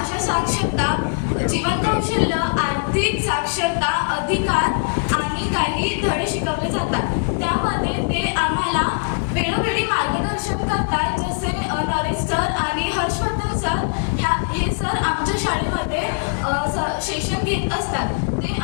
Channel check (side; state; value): right; silent; digital silence